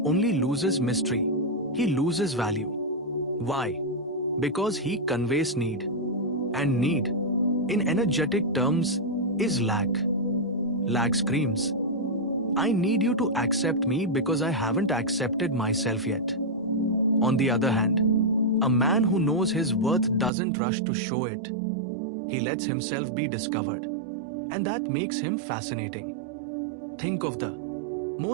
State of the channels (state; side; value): drops out; left; at 20.3 s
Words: only loses mystery, he loses value. Why? Because he conveys need. And need, in energetic terms, is lack. Lack screams, I need you to accept me because I haven't accepted myself yet. On the other hand, a man who knows his worth doesn't rush to show it. He lets himself be discovered. And that makes him fascinating. Think of the